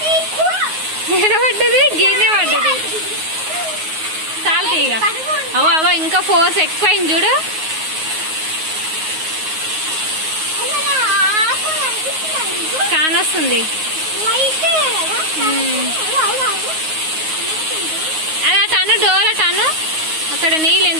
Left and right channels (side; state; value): left; late; 9.5 ms